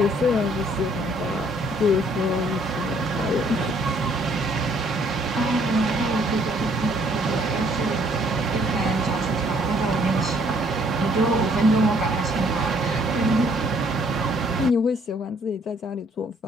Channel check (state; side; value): normal; both; correlation 0.64